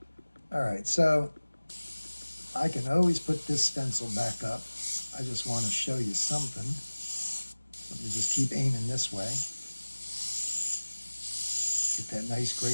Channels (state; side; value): inverted; both; correlation -1.00